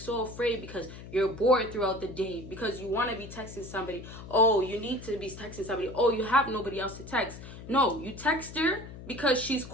afraid because you're bored throughout the day, because you want to be texting somebody. Oh, you need to be texting somebody. Oh, you have nobody else to text. No, you text her because she's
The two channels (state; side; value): noise; left; hum, 13 dB below the sound